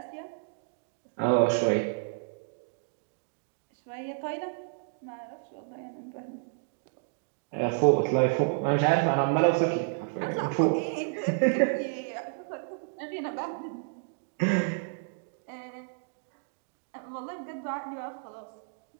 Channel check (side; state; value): left; silent; digital silence